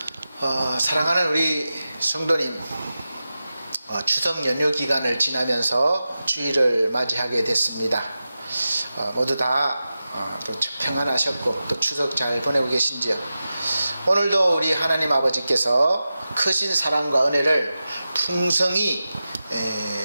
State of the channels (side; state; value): both; inverted; correlation -0.93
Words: 사랑하는 우리 성도님, 추석 연휴 기간을 지나면서 주일을 맞이하게 됐습니다. 모두 다 평안하셨고 또 추석 잘 보내고 계신지요? 오늘도 우리 하나님 아버지께서 크신 사랑과 은혜를 풍성히